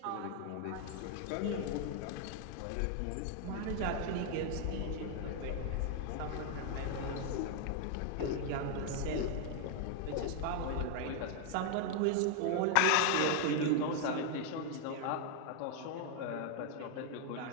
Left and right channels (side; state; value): both; different; correlation 0.00